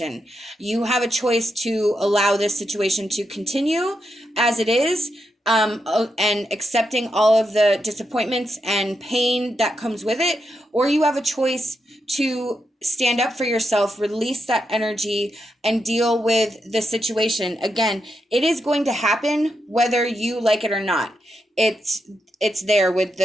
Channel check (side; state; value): both; normal; correlation 0.84